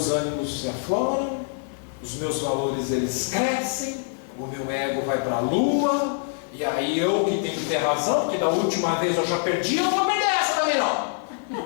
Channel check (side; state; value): right; silent; 62 dB below the other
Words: ânimos se afloram, os meus valores eles crescem, o meu ego vai para a lua, e aí eu que tenho que ter razão, porque da última vez eu já perdi, eu não vou perder essa também não.